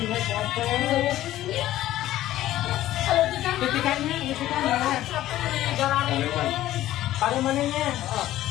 capek. Kalau kita Ketikannya. capek nih, garang ini. Pada mananya?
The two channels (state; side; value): quieter; right; 14.2 dB